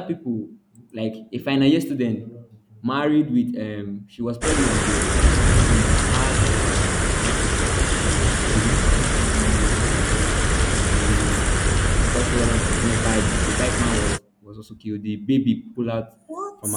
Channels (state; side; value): identical; both; correlation 1.00